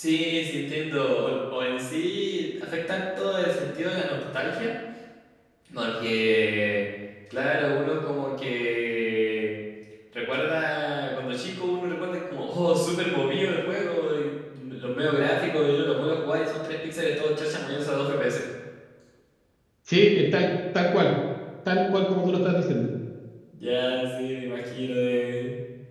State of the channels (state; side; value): identical; both; correlation 1.00